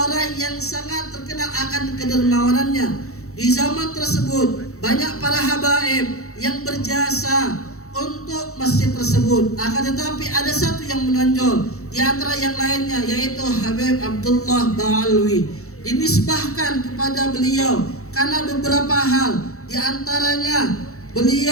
yang sangat terkenal akan kedermawanannya. Di zaman tersebut banyak para habaib yang berjasa untuk masjid tersebut. Akan tetapi ada satu yang menonjol di antara yang lainnya, yaitu Habib Abdullah Ba'alawi. Dinisbahkan kepada beliau karena beberapa hal. Di antaranya,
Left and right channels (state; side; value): late; right; 0.64 ms